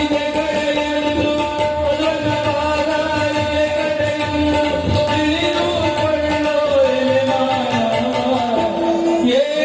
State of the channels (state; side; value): identical; both; correlation 1.00